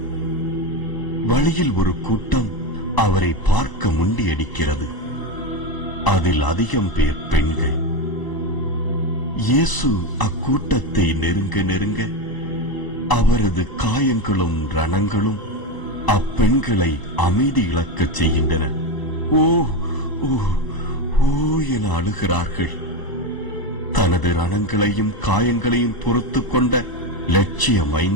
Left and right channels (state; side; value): late; right; 1.0 ms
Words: வழியில் ஒரு கூட்டம் அவரை பார்க்க முண்டியடிக்கிறது. அதில் அதிகம் பேர் பெண்கள். இயேசு அக்கூட்டத்தை நெருங்க நெருங்க அவரது காயங்களும் ரணங்களும் அப்பெண்களை அமைதி இழக்கச் செய்கின்றன. ஓ ஓ ஓ என அழுகிறார்கள். தனது ரணங்களையும் காயங்களையும் பொறுத்து கொண்ட லட்சிய